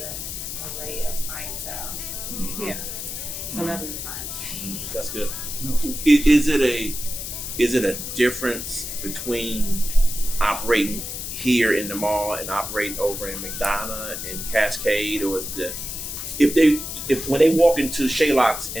an array of clientele. Yeah, celebrity clientele. That's good. Is it a difference between operating here in the mall and operating over in McDonough and Cascade, or is if when they walk into Shealocs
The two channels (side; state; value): left; noise; hiss, 6 dB below the sound